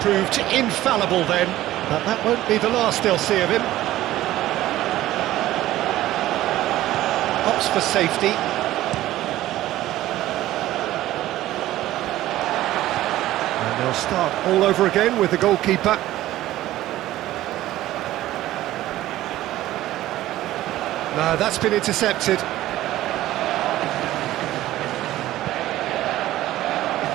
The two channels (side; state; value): left; quieter; 14.9 dB